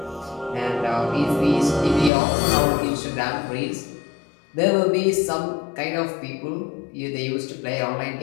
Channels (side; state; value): right; drops out; at 2.1 s